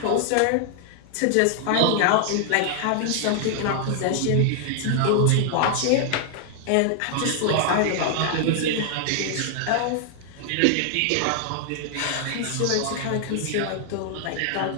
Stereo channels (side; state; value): both; different; correlation 0.00